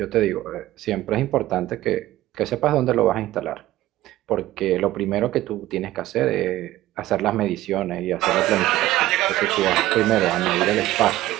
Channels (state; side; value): quieter; left; 15.5 dB